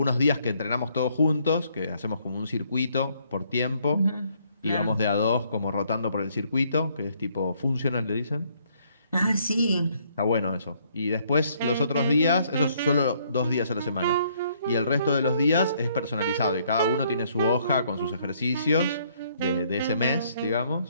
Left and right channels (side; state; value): both; inverted; correlation -0.67